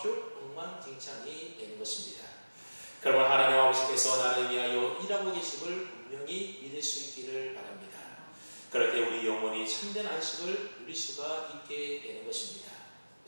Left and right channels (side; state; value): both; inverted; correlation -1.00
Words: 엉망진창이 되는 것입니다. 그러면 하나님 아버지께서 나를 위하여 일하고 계심을 분명히 믿을 수 있기를 바랍니다. 그럴 때 우리 영혼이 참된 안식을 누릴 수가 있게 되는 것입니다.